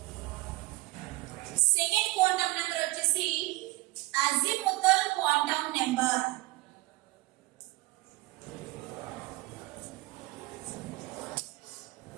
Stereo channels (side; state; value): left; quieter; 20.8 dB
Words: సెకండ్ క్వాంటం నెంబర్ వచ్చేసి azimuthal quantum number.